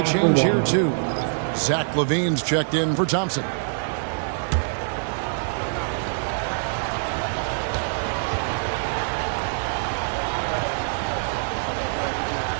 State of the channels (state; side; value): silent; left; 62 dB below the other